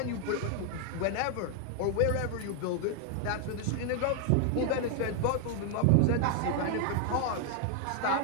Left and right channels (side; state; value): both; different; correlation 0.00